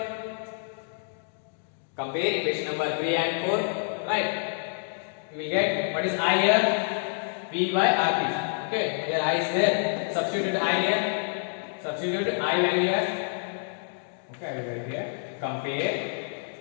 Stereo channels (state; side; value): silent; right; digital silence